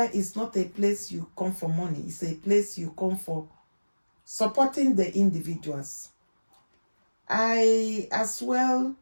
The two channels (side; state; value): both; inverted; correlation -1.00